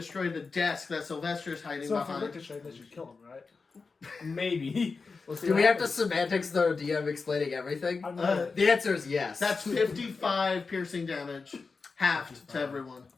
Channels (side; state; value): right; quieter; 4.5 dB